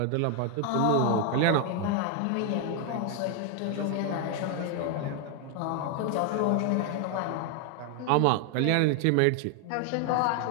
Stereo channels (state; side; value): different; both; correlation 0.01